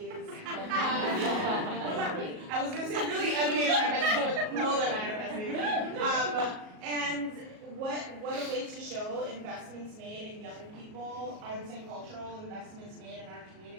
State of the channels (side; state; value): left; late; 37 ms